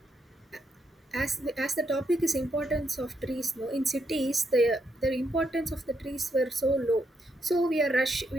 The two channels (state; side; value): normal; both; correlation 0.79